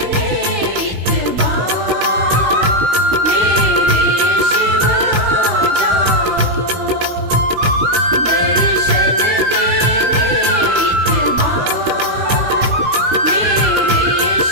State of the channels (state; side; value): late; left; 16 ms